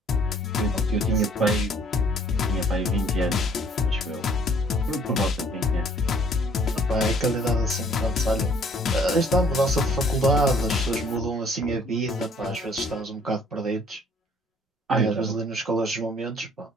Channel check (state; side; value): normal; both; correlation 0.59